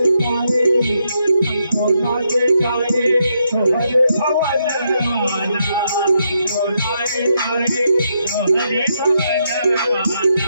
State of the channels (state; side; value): inverted; both; correlation -0.79